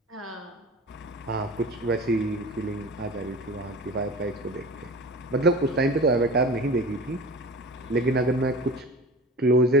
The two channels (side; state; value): both; normal; correlation 0.36